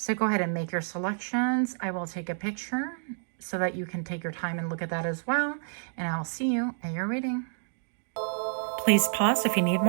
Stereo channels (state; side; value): silent; left; digital silence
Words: go ahead and make your selections. I will take a picture so that you can take your time and look at that as well. And I'll see you at your reading. Please pause if you need